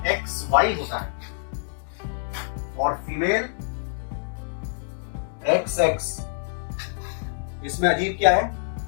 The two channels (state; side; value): silent; right; digital silence